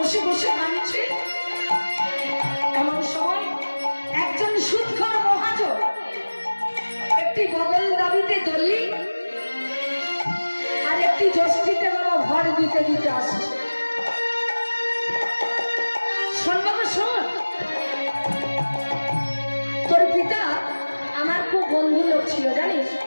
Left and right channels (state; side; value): inverted; both; correlation -1.00